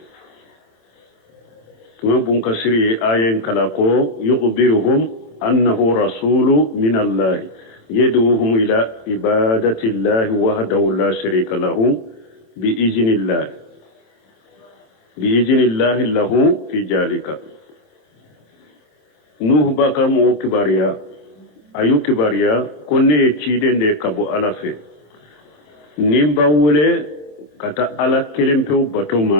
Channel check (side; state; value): right; late; 27 ms